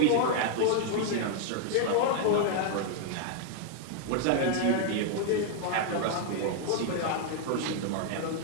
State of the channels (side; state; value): both; different; correlation 0.00